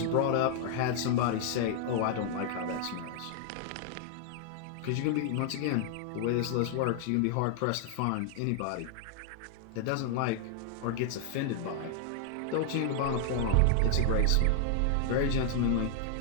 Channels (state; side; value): different; both; correlation 0.00